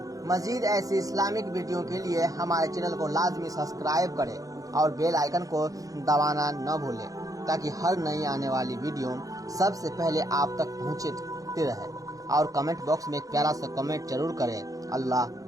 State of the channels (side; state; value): left; late; 0.17 ms